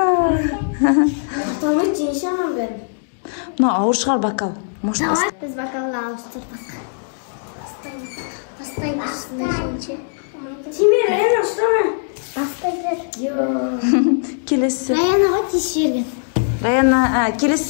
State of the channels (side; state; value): right; silent; digital silence